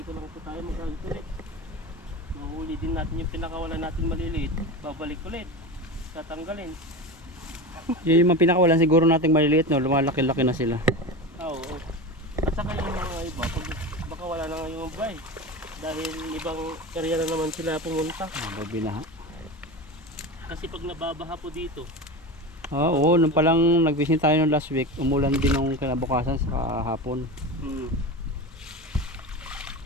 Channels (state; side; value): normal; both; correlation 0.26